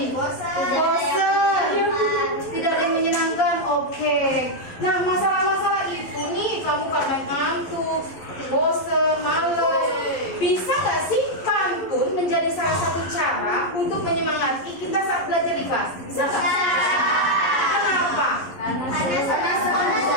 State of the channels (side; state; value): right; late; 11 ms